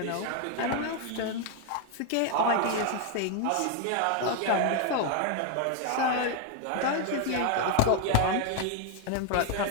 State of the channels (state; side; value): different; both; correlation 0.01